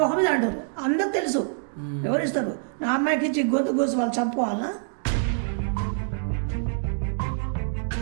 మీద అంటారు అందరికి తెలుసు ఎవరిస్తారు నా అమ్మాయికి ఇచ్చి గొంతు కోసి వాళ్ళు చంపుకోవాలనా.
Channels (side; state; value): left; silent; digital silence